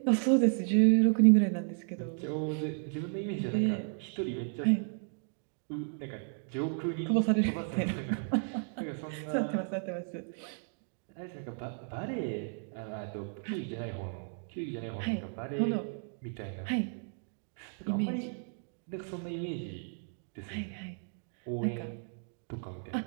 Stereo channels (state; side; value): silent; left; 55 dB below the other